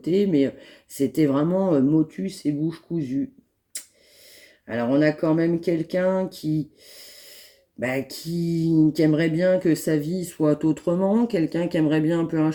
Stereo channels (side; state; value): both; identical; correlation 1.00